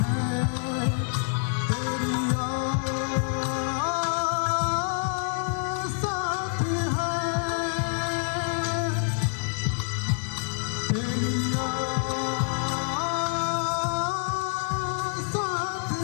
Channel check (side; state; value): right; silent; 59 dB below the other